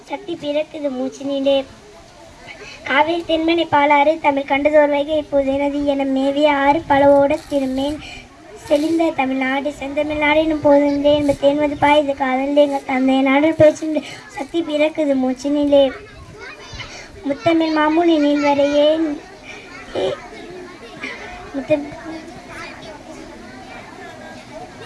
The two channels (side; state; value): both; identical; correlation 1.00